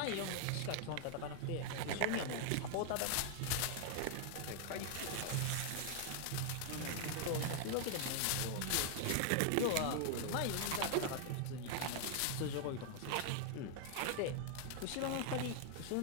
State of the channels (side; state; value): both; different; correlation 0.00